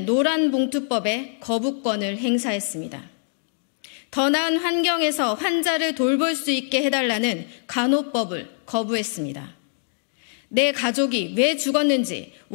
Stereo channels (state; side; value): silent; right; digital silence